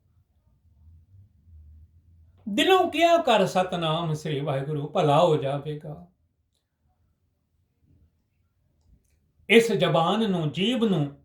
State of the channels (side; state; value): both; identical; correlation 1.00